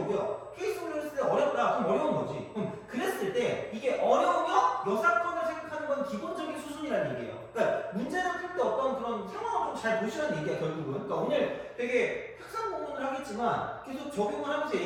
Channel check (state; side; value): identical; both; correlation 1.00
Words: 케이스 분류를 했을 때 어렵다. 그럼 어려운 거지. 그럼 그랬을 때 이게 어려우면 여사건을 생각하는 건 기본적인 수준이라는 얘기예요. 그러니까 문제를 풀 때 어떤 그런 상황을 좀 잘 보시라는 얘기야 결국은. 그러니까 오늘 되게 학상 공부를 하겠지만 계속 적용을 하면서